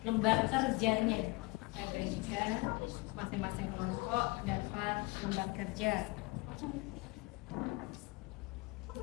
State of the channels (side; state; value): right; quieter; 24.4 dB